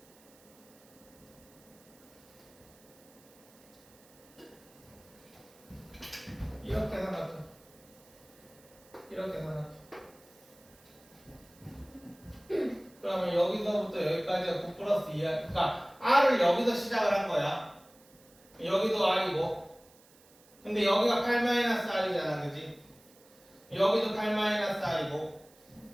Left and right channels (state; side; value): noise; right; hiss, 27 dB below the sound